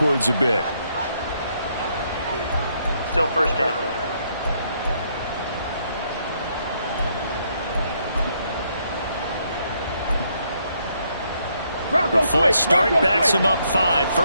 a bit. Still first down. The false start backs him up 5,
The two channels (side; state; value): both; inverted; correlation -0.73